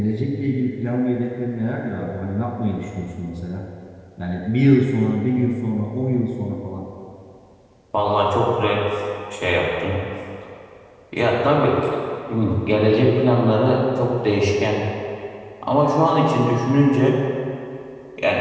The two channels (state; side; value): identical; both; correlation 1.00